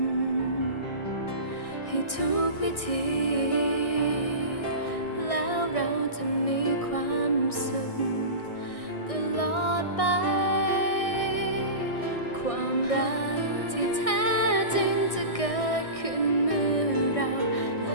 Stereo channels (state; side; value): late; right; 1.6 ms